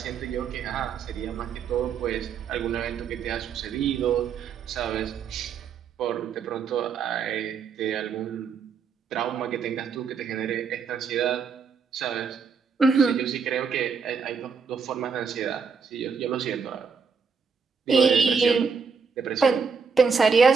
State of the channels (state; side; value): quieter; left; 5.6 dB